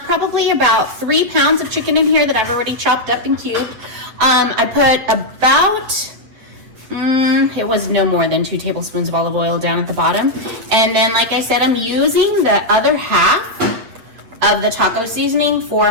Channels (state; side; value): late; left; 8.8 ms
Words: probably about 3 pounds of chicken in here that I've already chopped up and cubed. I put about, it was no more than 2 tablespoons of olive oil down at the bottom. And then, like I said, I'm using the other half of the taco seasoning